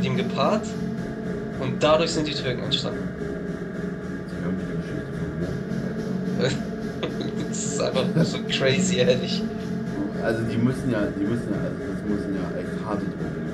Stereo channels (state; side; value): identical; both; correlation 1.00